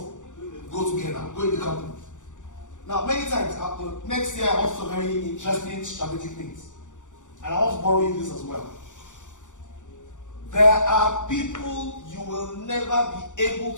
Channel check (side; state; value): right; late; 0.86 ms